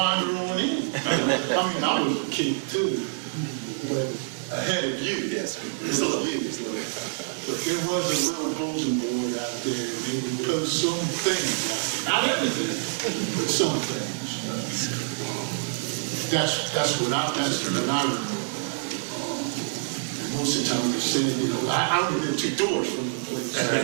on in. I mean, I was a kid too, but ahead of you. Yes, it's a little you. But there was a little bulletin board out there, and they would post some things out there. Not everything, but some things. That's what I remember. Most of the time they said, I only live 2 doors from the place. I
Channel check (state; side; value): silent; left; digital silence